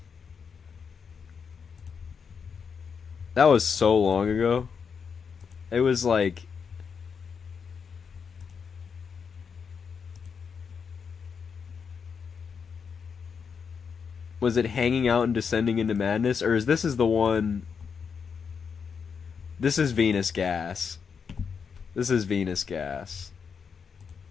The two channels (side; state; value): right; quieter; 6.2 dB